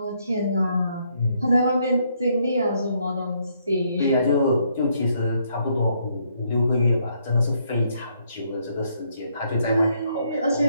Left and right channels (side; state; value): both; inverted; correlation -0.72